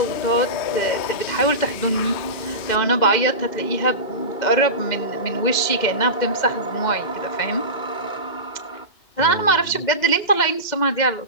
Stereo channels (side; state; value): right; late; 2.1 ms